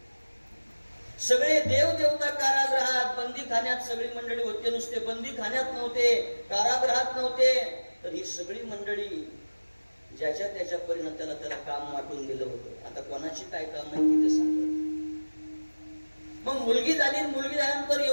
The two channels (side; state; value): both; inverted; correlation -1.00